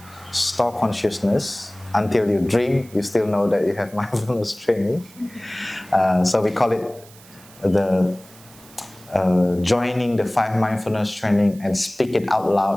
store consciousness. Until you dream, you still know that you have mindfulness training. So we call it the joining the 5 mindfulness training and speak it out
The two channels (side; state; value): right; noise; hiss, 23 dB below the sound